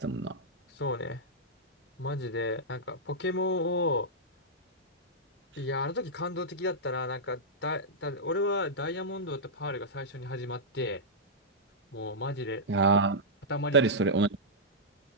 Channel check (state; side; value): normal; both; correlation -0.11